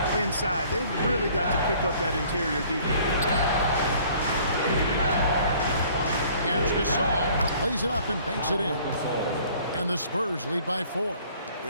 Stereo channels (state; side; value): inverted; both; correlation -0.55